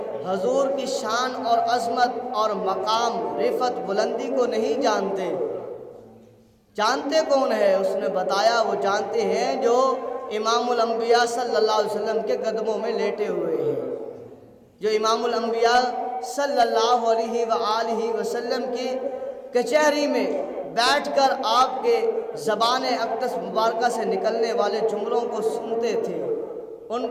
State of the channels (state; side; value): identical; both; correlation 1.00